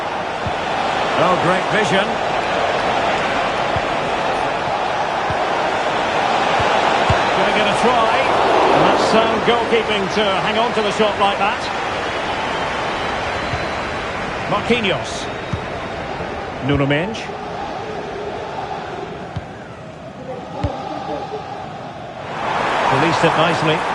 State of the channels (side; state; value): both; identical; correlation 1.00